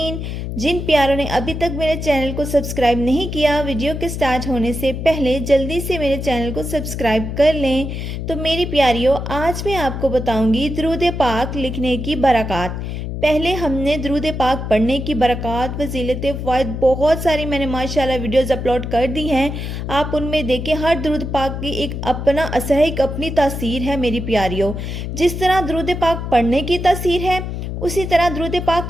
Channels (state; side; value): noise; left; hum, 5 dB below the sound